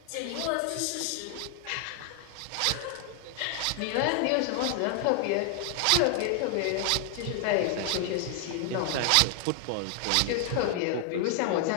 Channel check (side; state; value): both; different; correlation 0.00